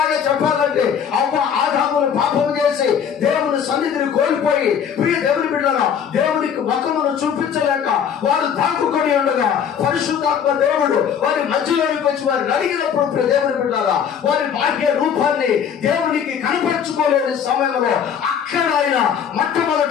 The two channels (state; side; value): quieter; right; 7.9 dB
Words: చెప్పాలంటే ఆదామును పాపం చేసి దేవుని సన్నిధిని కోల్పోయి, ప్రియ దేవుని బిడ్డలారా, దేవునికి ముఖమును చూపించలేక వారు దాక్కుకొని ఉండగా పరిశుద్ధాత్మ దేవుడు వారి మధ్యలోకి వచ్చి వారిని అడిగినప్పుడు, ప్రియ దేవుని బిడ్డలారా, వారి భాగ్య రూపాన్ని దేవునికి కనపరుచుకోలేని సమయంలో అక్కడ ఆయన